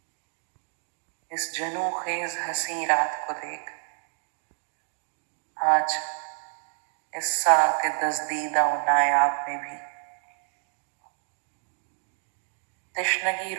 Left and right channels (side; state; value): left; silent; 59 dB below the other